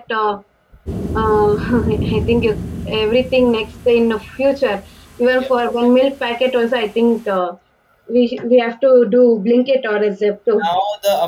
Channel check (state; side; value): identical; both; correlation 1.00